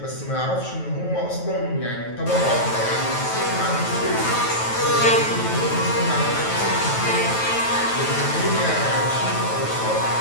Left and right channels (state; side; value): late; right; 9.2 ms